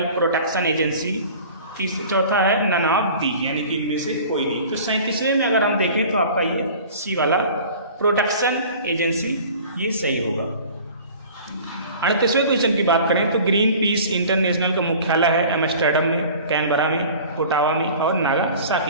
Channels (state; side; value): inverted; both; correlation -0.44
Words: protection agency. चौथा है नन ऑफ दी, यानी कि इनमें से कोई नहीं। तो 37वें में अगर हम देखें तो आपका ये सी वाला प्रोटेक्शन एजेंसी ये सही होगा। 38वें क्वेश्चन की बात करें तो ग्रीन पीस इंटरनेशनल का मुख्यालय है एम्स्टर्डम में, कैनबरा में, ओटावा में और